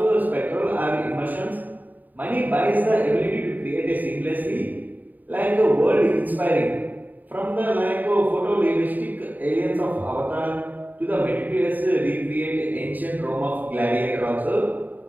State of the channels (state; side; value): late; left; 0.085 ms